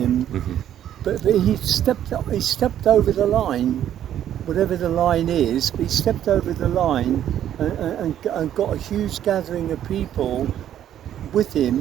But he stepped over the line, whatever the line is. He stepped over the line and got a huge gathering of people with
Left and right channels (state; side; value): quieter; left; 10.9 dB